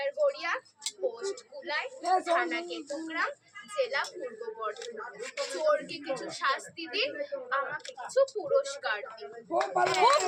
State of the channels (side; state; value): both; identical; correlation 1.00